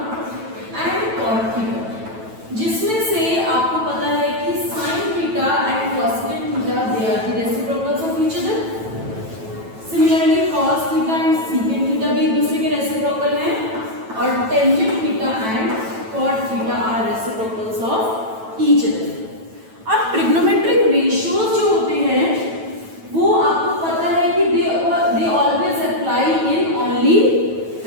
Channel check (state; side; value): late; left; 9.1 ms